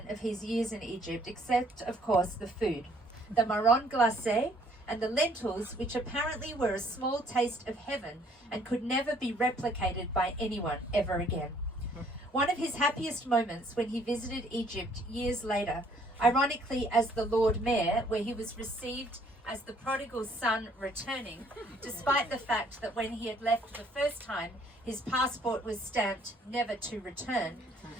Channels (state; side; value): normal; both; correlation 0.62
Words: of his years in Egypt, except, of course, the food. The marron glacé and the lentils, which apparently were a small taste of heaven and could never be replicated by anyone ever again. One of his happiest moments when he visited Egypt years later, ironically as the Lord Mayor, where he was received as the prodigal son returning, despite the fact that when he had left the first time, his passport was stamped never to return,